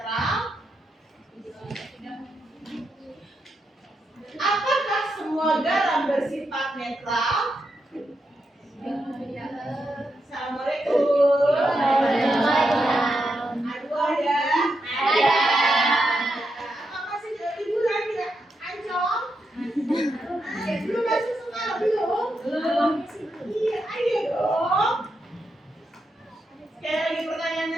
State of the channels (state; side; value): normal; both; correlation 0.84